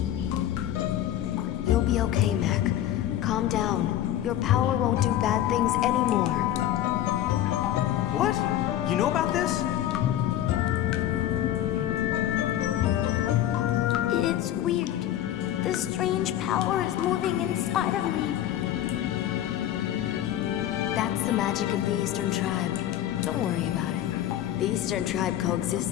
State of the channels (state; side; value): quieter; right; 12.1 dB